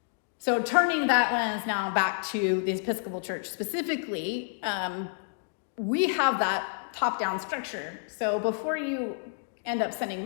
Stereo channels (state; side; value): silent; right; digital silence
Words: So turning that lens now back to the Episcopal Church specifically, we have that top-down structure. So before you end up sending